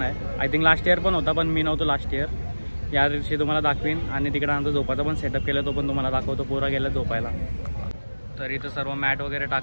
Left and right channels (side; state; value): both; inverted; correlation -1.00